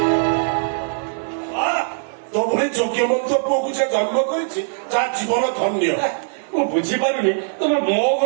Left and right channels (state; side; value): silent; left; digital silence